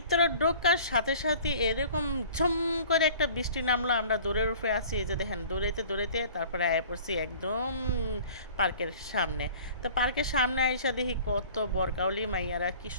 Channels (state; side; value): inverted; both; correlation -0.47